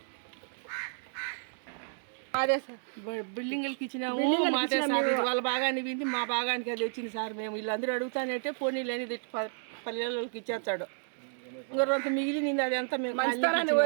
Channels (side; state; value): left; silent; digital silence